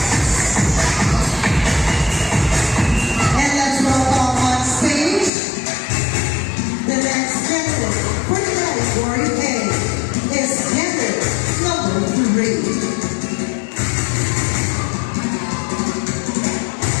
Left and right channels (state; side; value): drops out; right; at 5.3 s